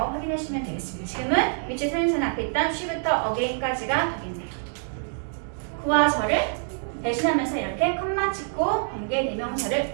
확인하시면 되겠습니다. 지금은 위치 선행사는 앞에 있던 she부터 again까지가 되겠네요. 구와 절을 대신하면서 이렇게 컴마 찍고 관계대명사를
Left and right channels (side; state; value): left; silent; 61 dB below the other